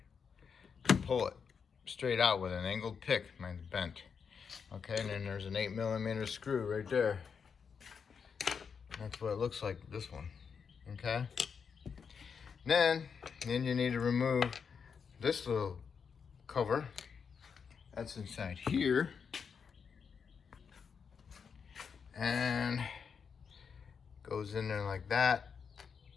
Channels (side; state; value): right; quieter; 6.3 dB